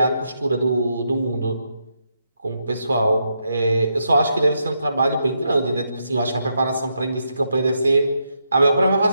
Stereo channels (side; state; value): both; inverted; correlation -0.81